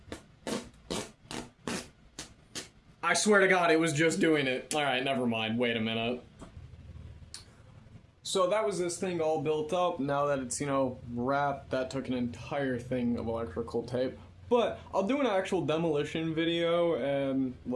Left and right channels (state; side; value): identical; both; correlation 1.00